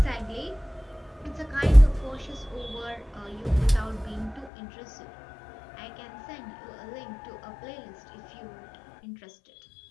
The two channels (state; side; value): drops out; right; at 4.5 s